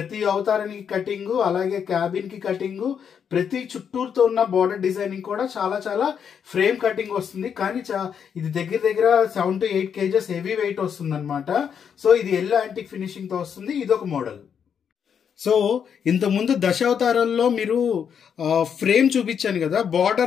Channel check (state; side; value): quieter; right; 7.6 dB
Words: అవతారానికి కటింగ్, అలాగే క్యాబిన్ కి కటింగ్, ప్రతి చుట్టూరుతో ఉన్న బార్డర్ డిజైనింగ్ కూడా చాలా చాలా ఫ్రేమ్ కటింగ్ వస్తుంది. కానీ ఇది దగ్గర 7 to 8 kgs హెవీ వెయిట్ వస్తుంది అనమాట. సో ఇది ఎల్లో యాంటిక్ ఫినిషింగ్ తో వస్తుంది. ఇదొక మోడల్. సో ఇంతకుముందు దశావతారాల్లో మీరు ఫ్రేమ్ చూపించాను కదా,